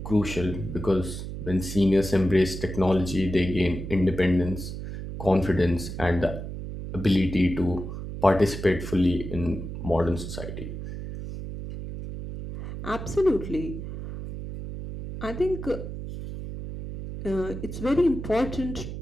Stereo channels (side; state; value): right; noise; hum, 8 dB below the sound